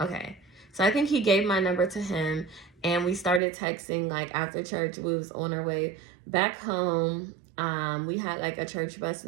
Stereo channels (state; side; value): drops out; left; at 3.4 s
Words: Okay, so I think he gave my number to him, and we started texting like after church. We was on our way back home. We had like a church bus